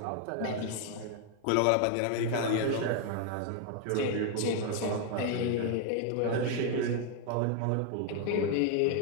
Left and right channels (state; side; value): different; both; correlation 0.00